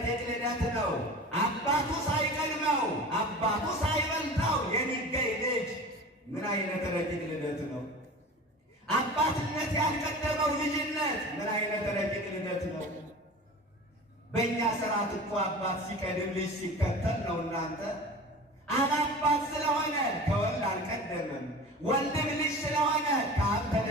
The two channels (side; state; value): both; normal; correlation 0.36